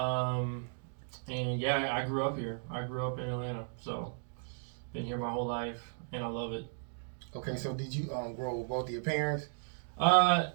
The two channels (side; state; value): left; silent; digital silence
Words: and yeah, I grew up here. I grew up in Atlanta, so been here my whole life, and I love it. Okay, so did you grow up with both of your parents?